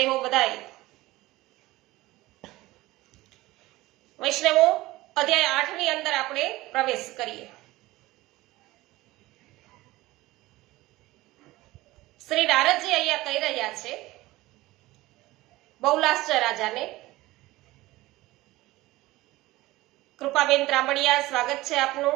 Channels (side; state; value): left; quieter; 18.6 dB